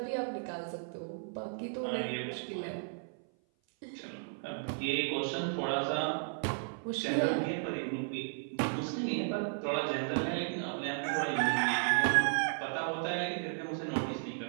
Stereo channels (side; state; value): left; silent; 55 dB below the other